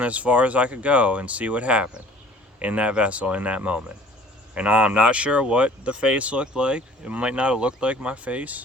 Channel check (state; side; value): normal; both; correlation 0.51